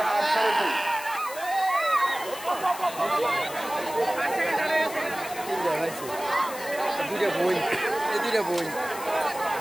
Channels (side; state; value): left; noise; hiss, 13 dB below the sound